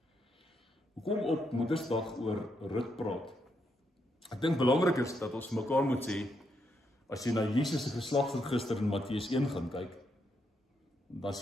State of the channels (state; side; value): normal; both; correlation 0.79